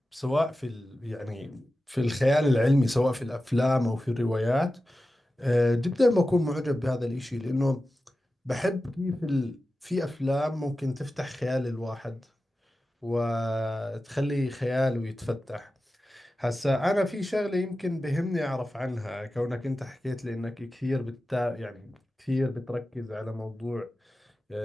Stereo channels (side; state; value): both; normal; correlation 0.94